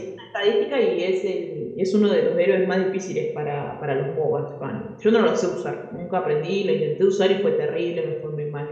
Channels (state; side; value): identical; both; correlation 1.00